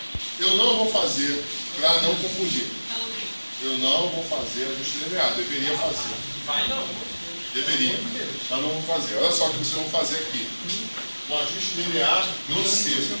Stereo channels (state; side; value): inverted; both; correlation -1.00